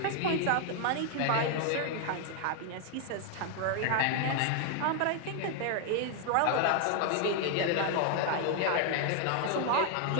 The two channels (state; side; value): different; both; correlation 0.00